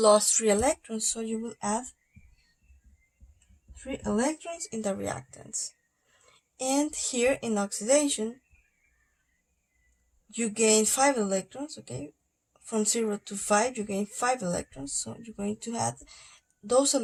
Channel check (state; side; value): identical; both; correlation 1.00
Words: 3 electrons, so you will add 3 electrons in the reactants. And here in oxidation, you gain 5 electrons, okay? From 0 to 5, you gain 5 electrons, so you're going to add those